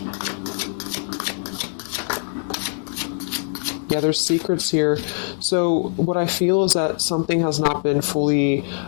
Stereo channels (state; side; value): silent; right; digital silence